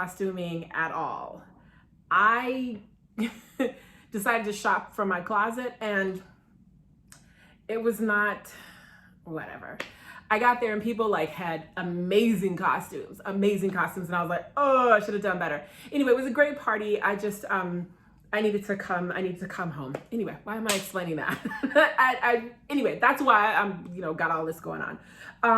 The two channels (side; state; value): both; identical; correlation 1.00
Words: at all. I decided to shop from my closet and it was not whatever. I got there and people had amazing costumes. And I was like, oh, I should have done better. Anyway, it was a great party. I needed to come home. Anyway, why am I explaining that? Anyway, that's why I'm, got all this going